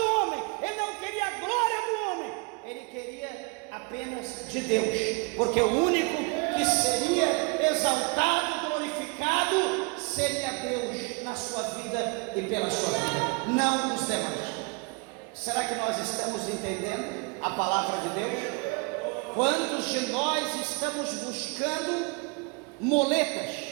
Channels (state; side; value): quieter; left; 31.2 dB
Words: homem, ele não queria a glória do homem, ele queria apenas de Deus, porque o único que seria exaltado, glorificado, seria Deus na sua vida e pela sua vida, não os demais. Será que nós estamos entendendo a palavra de Deus? Quantos de nós estamos buscando